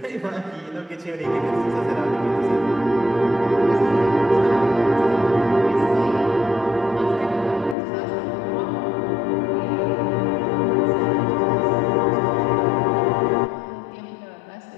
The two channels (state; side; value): drops out; right; at 7.8 s